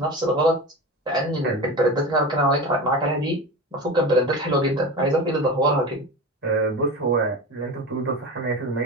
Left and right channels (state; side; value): normal; both; correlation 0.27